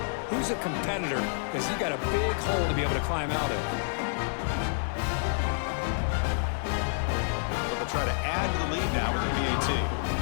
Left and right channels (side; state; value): right; silent; 59 dB below the other